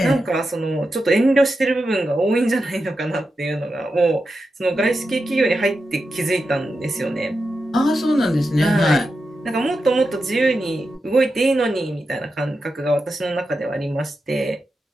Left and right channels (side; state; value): both; normal; correlation 0.89